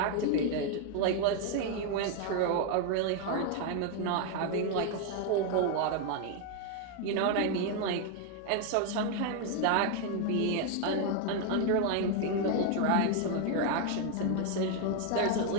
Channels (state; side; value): different; both; correlation 0.00